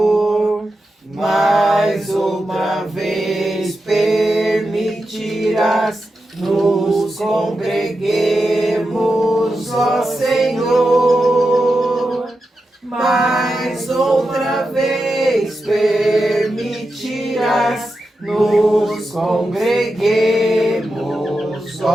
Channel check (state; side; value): normal; both; correlation 0.89